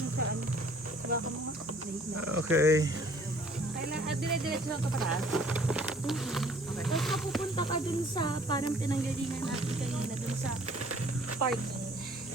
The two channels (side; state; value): both; normal; correlation 0.57